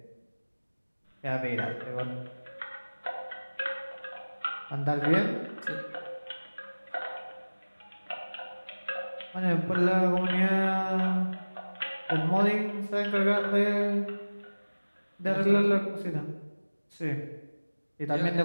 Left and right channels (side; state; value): both; inverted; correlation -1.00